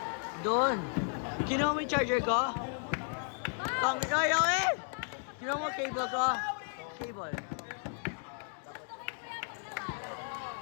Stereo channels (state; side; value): silent; right; 55 dB below the other